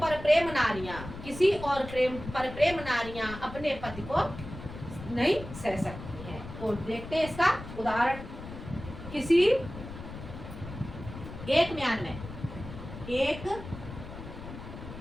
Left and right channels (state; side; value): noise; left; rumble, 11 dB below the sound